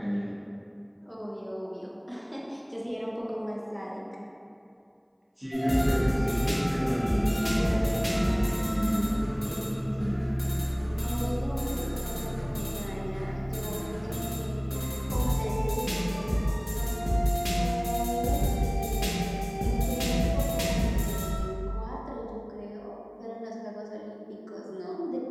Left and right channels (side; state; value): both; identical; correlation 1.00